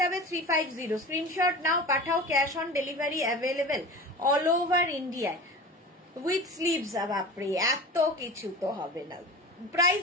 350, স্ক্রিনশট নাও পাঠাও, cash on delivery available all over ইন্ডিয়ায় উইথ স্লিভস। বাপরে এত কিছু তো হবে না।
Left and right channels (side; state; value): both; normal; correlation 0.33